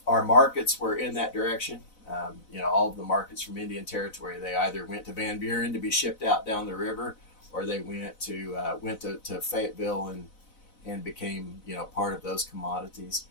our markets were in that direction. All of the markets from Indian Territory, they either went to Van Buren to be shipped out down the river, or they went to Fayetteville and became part of those commodities.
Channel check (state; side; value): late; right; 4.0 ms